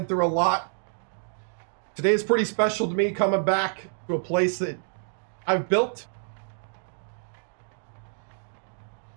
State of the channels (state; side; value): silent; left; 60 dB below the other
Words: through a lot. Today is pretty special to me, coming back to a place that I've built.